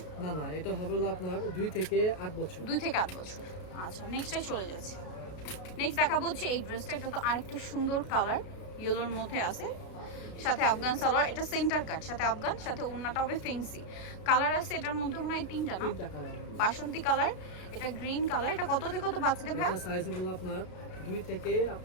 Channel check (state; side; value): late; right; 33 ms